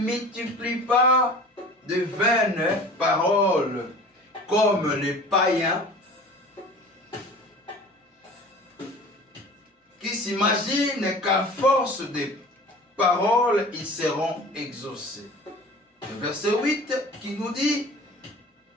pas de vaines paroles comme les païens qui s'imaginent qu'à force de paroles, ils seront exaucés. Le verset 8 qui nous dit,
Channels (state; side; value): normal; both; correlation 0.41